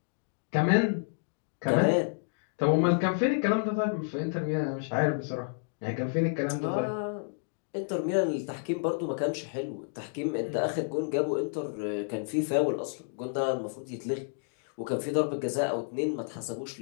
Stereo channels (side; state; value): right; silent; digital silence